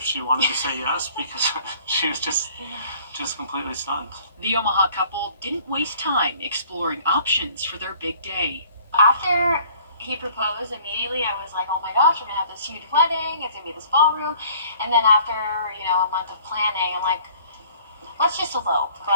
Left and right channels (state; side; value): inverted; both; correlation -0.54